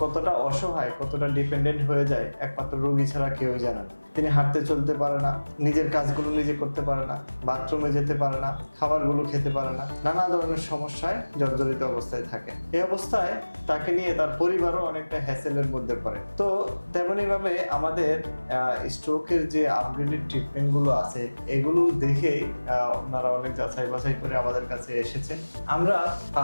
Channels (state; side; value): inverted; both; correlation -1.00